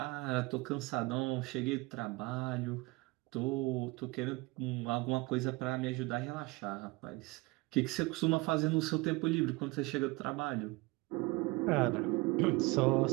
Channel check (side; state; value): left; quieter; 23.8 dB